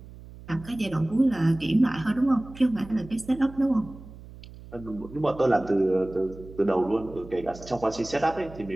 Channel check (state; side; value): noise; right; hum, 17 dB below the sound